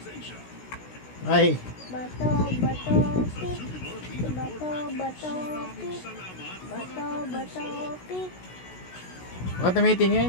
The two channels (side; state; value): right; late; 16 ms